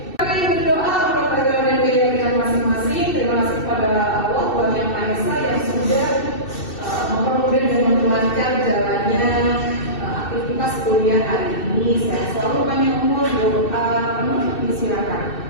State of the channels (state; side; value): late; right; 2.6 ms